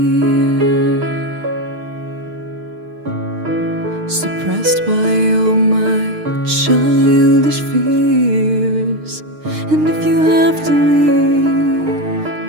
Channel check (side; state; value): left; late; 6.6 ms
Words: suppressed by all my childish fears. And if you have to leave,